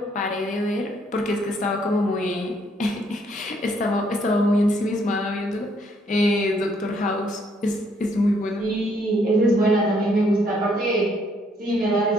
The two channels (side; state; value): both; normal; correlation 0.69